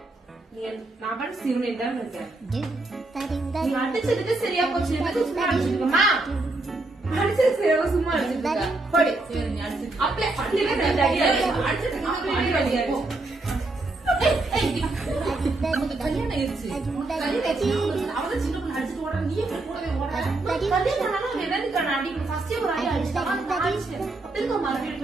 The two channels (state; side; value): quieter; left; 3.0 dB